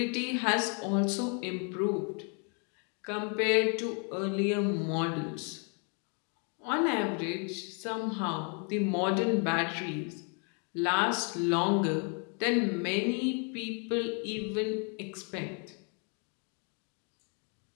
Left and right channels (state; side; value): quieter; right; 37.6 dB